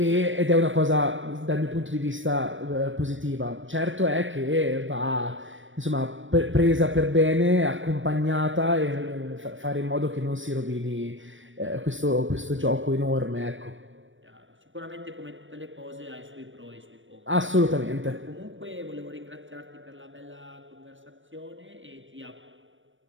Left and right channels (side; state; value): left; late; 0.56 ms